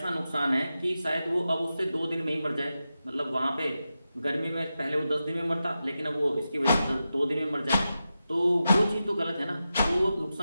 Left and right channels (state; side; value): inverted; both; correlation -0.91